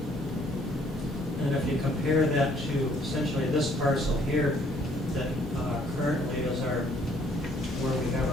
And if you compare that to essentially this parcel here, that currently is where we have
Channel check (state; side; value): normal; both; correlation 0.63